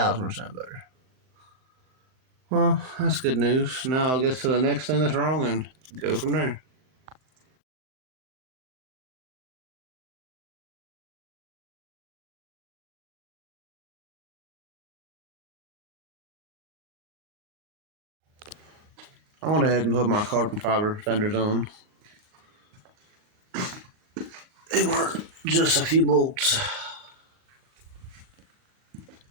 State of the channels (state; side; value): late; left; 39 ms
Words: Well, that's good news. Now I'll get to the next thing that's wrong and go from there. I went ahead and put my carbon fiber fenders on. They were just a few bolts.